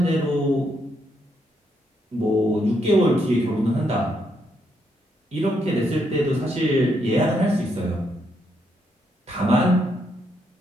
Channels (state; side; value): normal; both; correlation 0.77